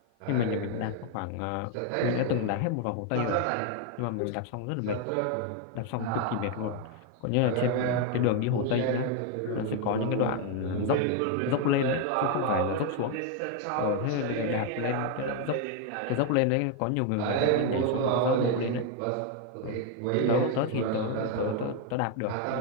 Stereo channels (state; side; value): different; both; correlation 0.01